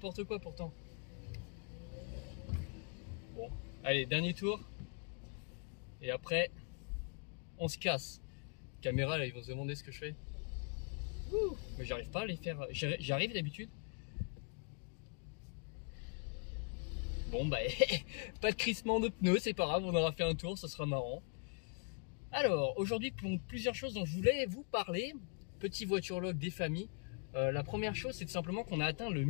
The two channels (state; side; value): quieter; right; 38.5 dB